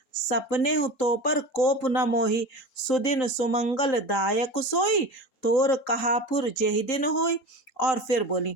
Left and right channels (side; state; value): right; late; 3.8 ms